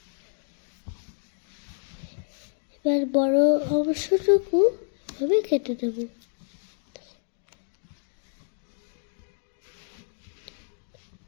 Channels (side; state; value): right; silent; digital silence